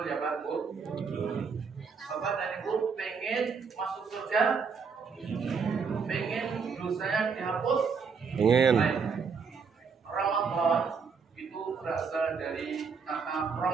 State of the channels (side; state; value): left; quieter; 5.6 dB